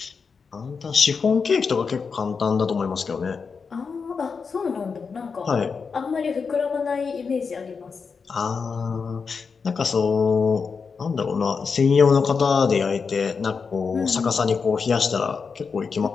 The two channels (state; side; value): quieter; right; 5.4 dB